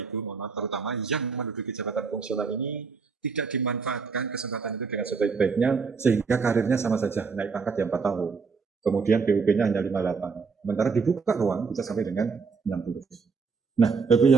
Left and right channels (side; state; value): left; quieter; 5.1 dB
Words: Ibu, mohon maaf, terutama yang menduduki jabatan fungsional ini tidak dimanfaatkan kesempatan itu dengan sebaik-baiknya, sehingga karirnya sama saja naik pangkat yang 4 tahun. Kemudian PUP-nya hanya 58. Sementara dibuka ruang bisa sampai dengan 60. Nah, Bapak